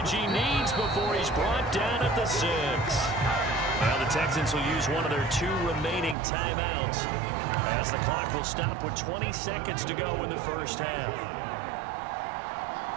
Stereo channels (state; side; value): drops out; left; at 6.2 s